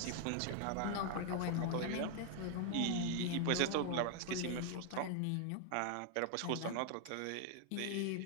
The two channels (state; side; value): different; both; correlation 0.00